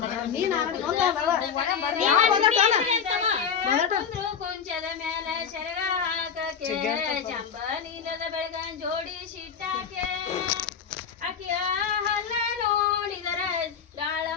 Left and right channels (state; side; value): quieter; right; 7.1 dB